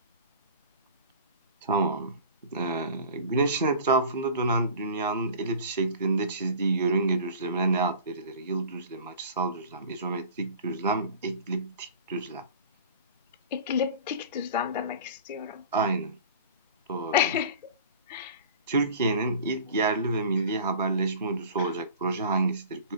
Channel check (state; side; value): inverted; both; correlation -0.41